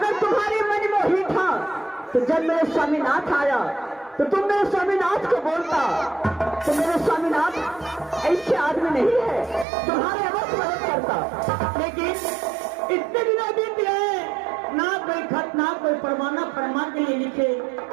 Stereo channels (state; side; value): drops out; left; at 9.7 s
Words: तुम्हारे मन में ही था तो जब मेरे स्वामीनाथ आया तो तुम मेरे स्वामीनाथ को बोलता। तो मेरे स्वामीनाथ ऐसे आदमी नहीं है, तुम्हारे अवश्य मदद करता। लेकिन इतने दिनों बीत गए, ना कोई खत, ना कोई फरमान के लिए लिखे,